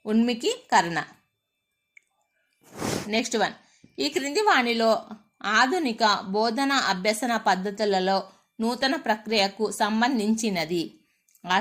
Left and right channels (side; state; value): both; identical; correlation 1.00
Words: ఉన్ముఖీకరణ. నెక్స్ట్ వన్, ఈ క్రింది వాణిలో ఆధునిక బోధన అభ్యసన పద్ధతులలో నూతన ప్రక్రియకు సంబంధించినది.